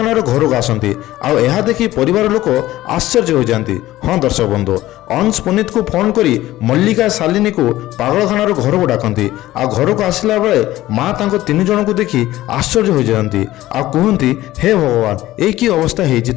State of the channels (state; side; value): quieter; right; 15.8 dB